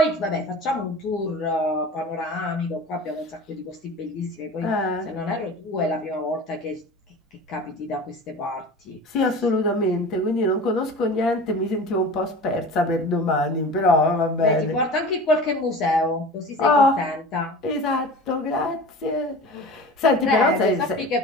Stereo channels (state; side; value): normal; both; correlation 0.36